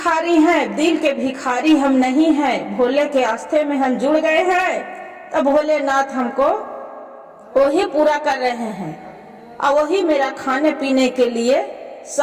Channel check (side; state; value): both; identical; correlation 1.00